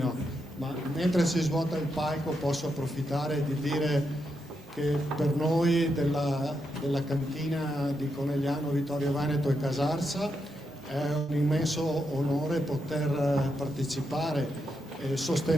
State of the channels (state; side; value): normal; both; correlation 0.83